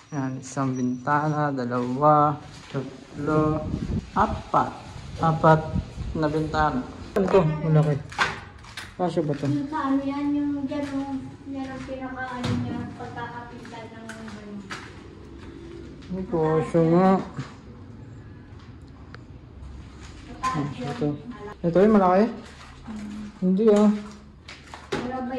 Yan, isang bintana, dalawa, tatlo, apat na bintana. Ano to? Malaki. Kasya ba to? Yung sa ano yan, yung dyan, yan ang pinaka-ano niya, pagkakapitan ng ano. Ay, kasya nga. Ito yung malaki? Hindi ah. Wala ba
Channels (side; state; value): both; identical; correlation 1.00